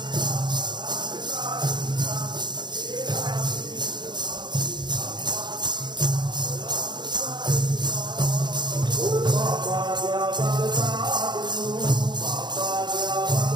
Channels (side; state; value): left; late; 0.21 ms